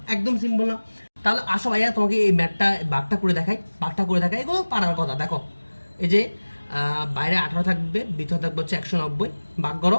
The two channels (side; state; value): both; inverted; correlation -1.00